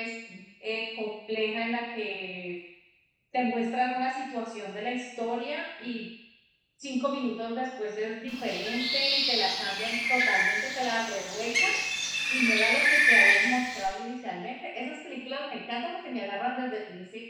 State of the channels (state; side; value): identical; both; correlation 1.00